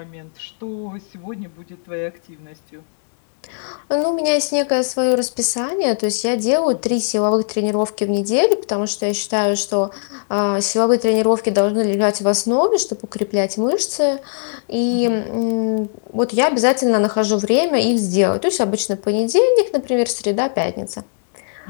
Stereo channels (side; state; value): right; silent; digital silence